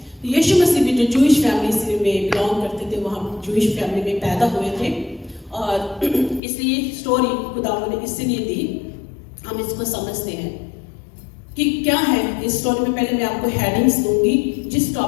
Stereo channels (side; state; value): right; drops out; at 6.4 s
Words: तो यीशु मसीह भी जो जूइश फैमिली से में बिलोंग करते थे, वहाँ जूइश फैमिली में पैदा हुए थे। और इसलिए स्टोरी खुदावंद ने इसलिए दी, हम इसको समझते हैं कि क्या है इस स्टोरी में। पहले मैं आपको हेडिंग्स दूंगी जिस